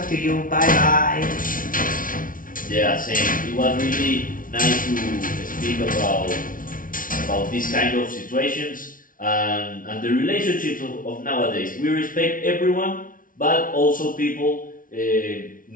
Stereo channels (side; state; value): right; late; 0.39 ms